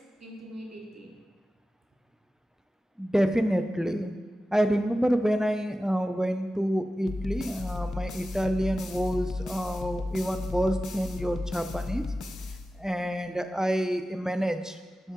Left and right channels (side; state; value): both; normal; correlation 0.94